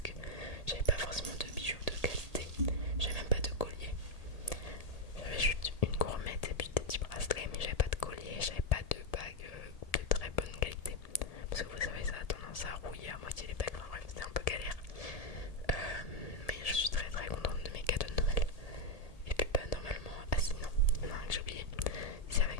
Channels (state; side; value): late; right; 1.8 ms